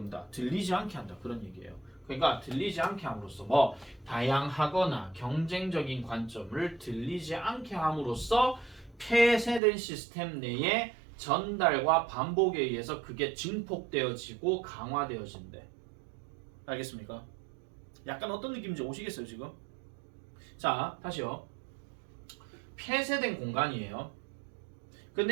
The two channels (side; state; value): left; drops out; at 9.6 s